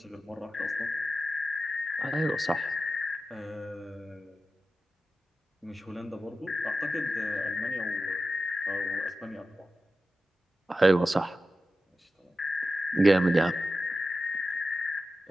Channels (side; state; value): both; normal; correlation 0.92